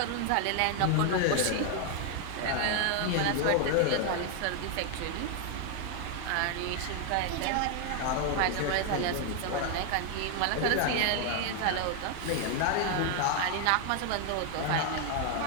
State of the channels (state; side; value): different; both; correlation 0.00